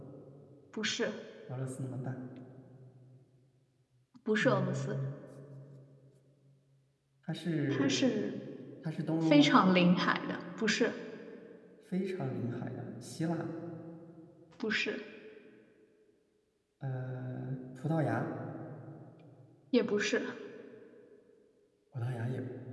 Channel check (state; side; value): identical; both; correlation 1.00